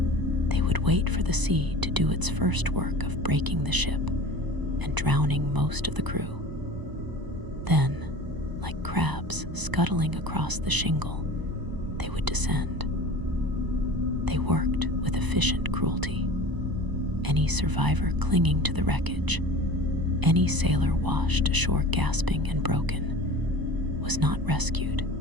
They would wait for the sea to do its first work of breaking the ship and drowning most of the crew. Then, like crabs scuttling across the shingle, they would descend. They worked with efficient cruelty. Any survivor clinging to the wreckage, any sailor washed ashore gasping and broken, was not rescued.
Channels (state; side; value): late; left; 1.0 ms